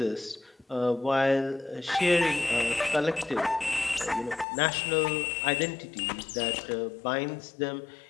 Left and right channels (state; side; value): drops out; right; at 4.5 s